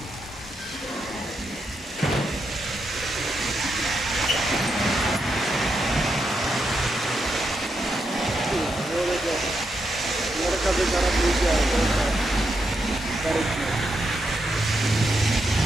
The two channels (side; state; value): both; normal; correlation 0.83